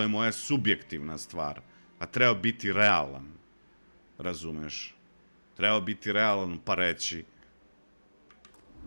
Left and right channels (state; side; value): inverted; both; correlation -1.00